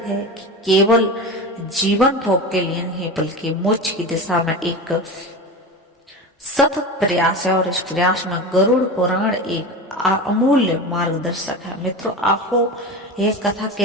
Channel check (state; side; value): normal; both; correlation 0.27